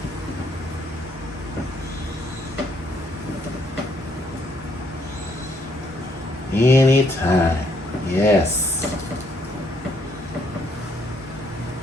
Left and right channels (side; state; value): both; normal; correlation 0.70